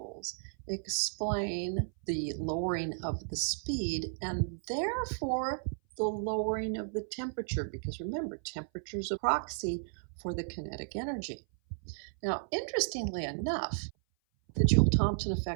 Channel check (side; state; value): left; silent; 55 dB below the other